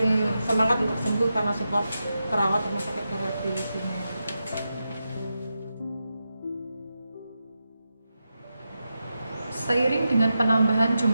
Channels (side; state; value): both; inverted; correlation -0.89